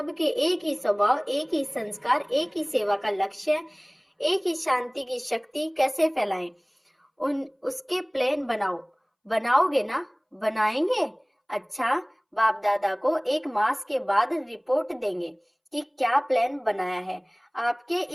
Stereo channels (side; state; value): both; identical; correlation 1.00